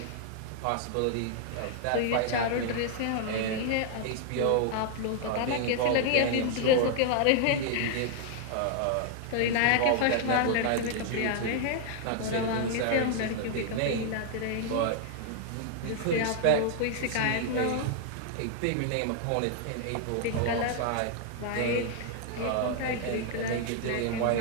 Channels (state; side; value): different; both; correlation 0.00